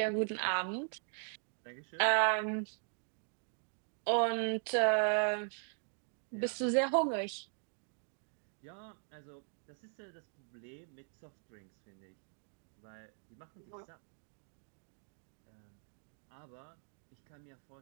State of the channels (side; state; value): left; silent; 51 dB below the other